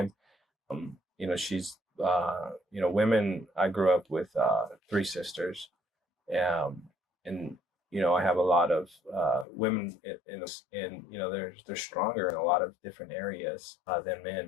She's, women, I grew up with 3 sisters. And I have a lot of women they're stronger in a lot of different areas than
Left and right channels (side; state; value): right; drops out; at 9.5 s